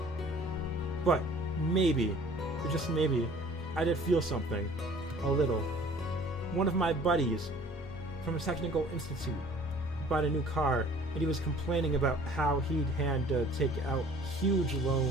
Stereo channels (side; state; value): both; normal; correlation 0.51